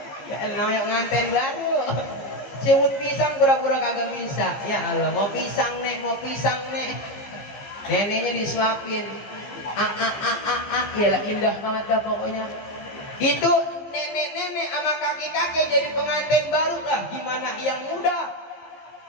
Ya namanya pengantin baru. Sebut pisang pura-pura kagak bisa. Ya Allah, mau pisang nek. Neneknya disuapin. Yalah indah banget dah pokoknya. Itu nenek-nenek sama kakek-kakek jadi pengantin baru lah. Gimana yang muda?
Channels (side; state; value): right; late; 15 ms